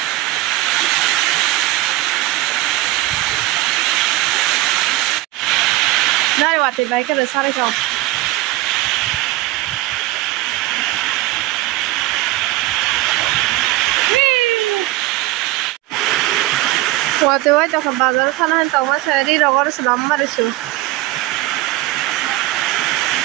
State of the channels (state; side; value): quieter; left; 16.8 dB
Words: đây wa thì mấy cái được sao đây chồng Waktu itu ke bazar sana tahu mas saya di rogor selama itu.